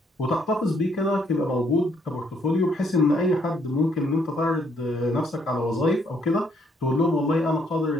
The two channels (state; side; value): normal; both; correlation 0.69